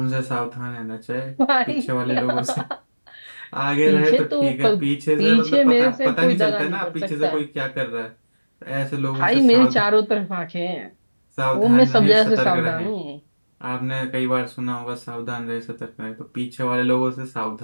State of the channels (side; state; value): both; inverted; correlation -1.00